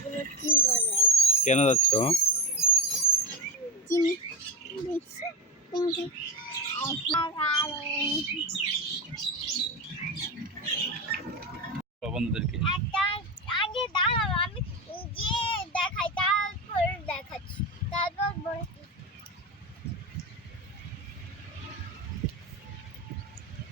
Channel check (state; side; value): normal; both; correlation 0.19